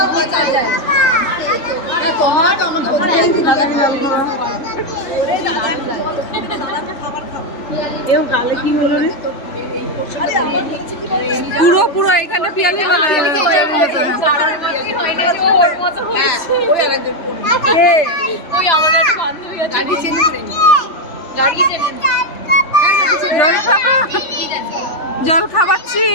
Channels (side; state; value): right; late; 3.4 ms